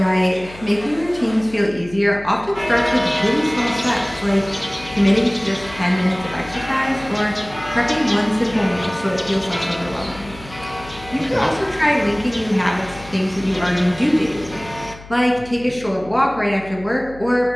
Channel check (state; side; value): noise; left; hum, 18 dB below the sound